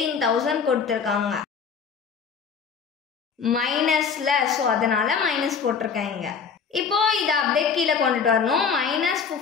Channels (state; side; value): quieter; right; 6.2 dB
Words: கொடுத்துருக்காங்க. மைனஸில், ஸோ அதனால் மைனஸ் போட்டிருக்கேன் இங்கே. இப்போது இதை அப்படியே கீழே கொண்டுட்டு வரணும். மைனஸ்